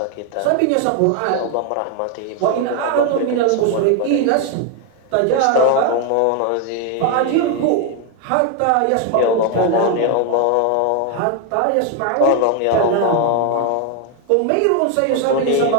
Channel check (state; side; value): different; both; correlation 0.01